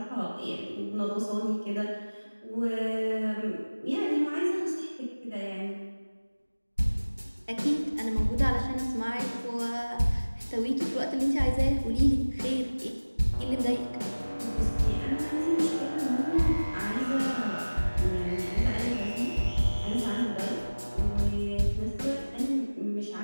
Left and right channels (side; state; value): both; inverted; correlation -1.00